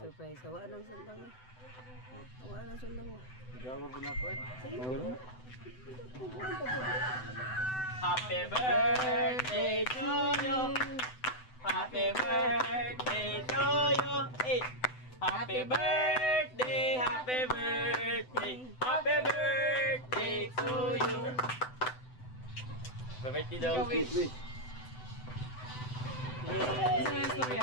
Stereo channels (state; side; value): late; right; 7.9 ms